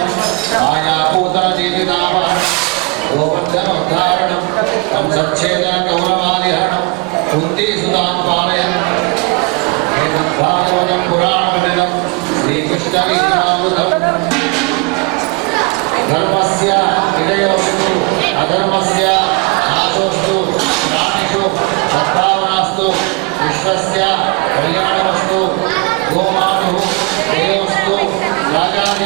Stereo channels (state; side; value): quieter; left; 30.2 dB